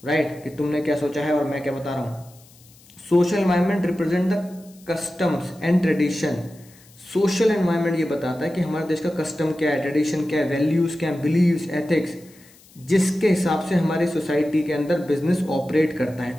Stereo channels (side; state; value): left; noise; hiss, 26 dB below the sound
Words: राइट, कि तुमने क्या सोचा है और मैं क्या बता रहा हूं। Social environment represent the customs and tradition. Social environment ये बताता है कि हमारे देश का कस्टम क्या है, ट्रेडिशन क्या है, वैल्यूज क्या है, बिलीव्स, एथिक्स, जिसके हिसाब से हमारी सोसाइटी के अंदर बिजनेस ऑपरेट करता